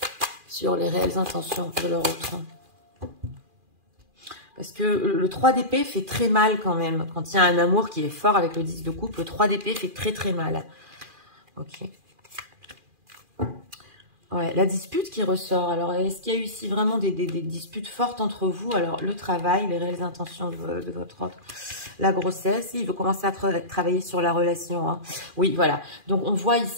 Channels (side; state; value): left; late; 2.4 ms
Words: sur les réelles intentions de leur autre? Parce que le 3 d'épée fait très mal quand même. Quand il y a un amour qui est fort avec le 10 de coupe, le 3 d'épée fait très très mal. Ok. Ouais, la dispute qui ressort. Alors, est-ce qu'il y a eu ici vraiment des disputes fortes entre vous? Alors, le travail, les réelles intentions de votre autre, la grossesse, il veut commencer à travailler sur la relation. Hein. Oui, voilà. Donc, on voit